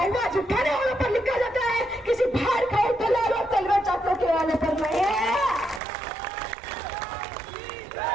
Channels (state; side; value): drops out; left; at 5.8 s